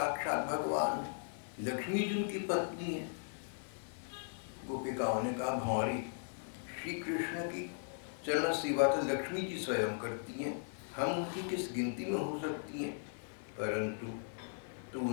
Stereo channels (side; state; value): right; silent; 52 dB below the other